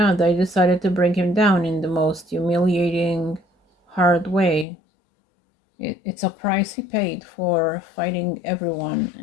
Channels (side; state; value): right; drops out; at 4.7 s